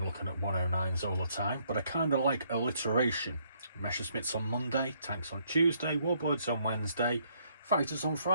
looking at 109s all the time, but I kind of like alliteration. Messerschmitts on Monday, tanks on Tuesday, warbirds on Wednesday, fighters on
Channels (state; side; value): inverted; both; correlation -0.69